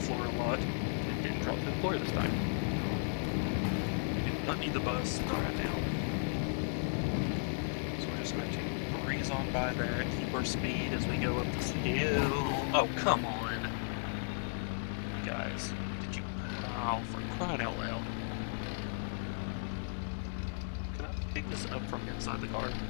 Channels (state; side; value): silent; right; 54 dB below the other